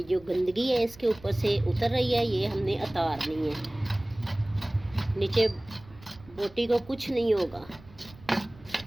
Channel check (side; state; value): right; noise; rumble, 22 dB below the sound